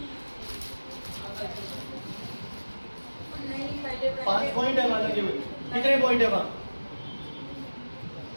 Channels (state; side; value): inverted; both; correlation -1.00